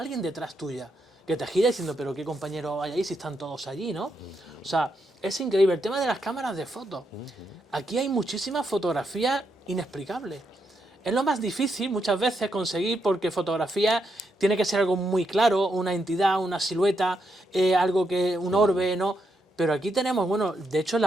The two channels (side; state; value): both; normal; correlation 0.81